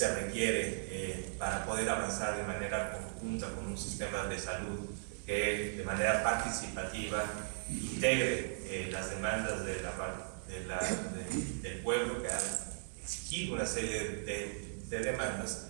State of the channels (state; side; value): silent; left; digital silence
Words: requiere para poder avanzar de manera conjunta con un sistema de salud que de manera participativa integre las demandas del pueblo, que ha exigido una serie de demandas,